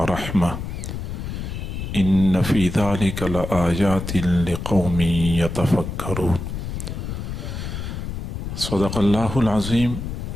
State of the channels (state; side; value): noise; left; rumble, 6 dB below the sound